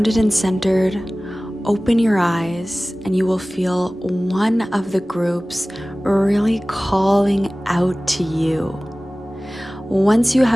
and centered, open your eyes and you will feel one of the groups really calling out to you. Once you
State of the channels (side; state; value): both; normal; correlation 0.98